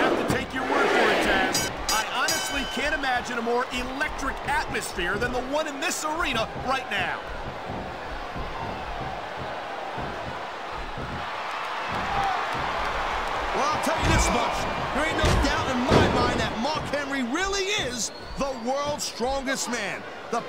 have to take your word for it, Taz. I honestly can't imagine a more electric atmosphere than the one in this arena right now. Well, I'll tell you this much. There ain't no doubt in my mind that Mark Henry really is the world's strongest man. The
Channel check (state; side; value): identical; both; correlation 1.00